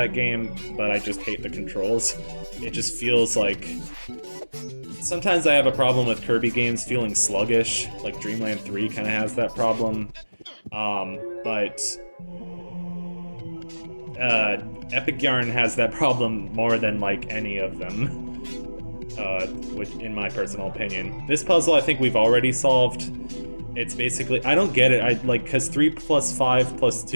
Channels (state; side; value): inverted; both; correlation -1.00